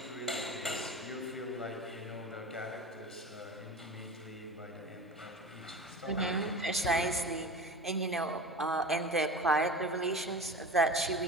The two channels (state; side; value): normal; both; correlation 0.34